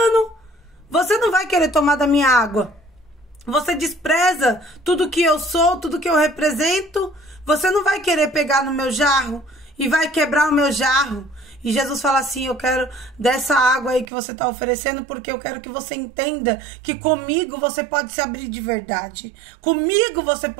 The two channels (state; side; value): drops out; left; at 14.1 s